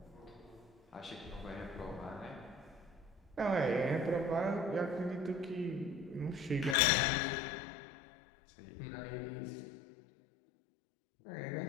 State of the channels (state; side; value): drops out; right; at 6.8 s